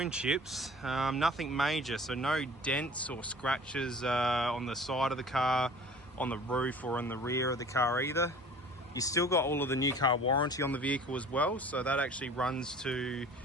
chips, nothing major, so no dents or scratches on the side of the car, on the roof or on the rear of the car either. You still got all of the new car warranty on the vehicle as well, so that actually runs to,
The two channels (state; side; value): normal; both; correlation 0.46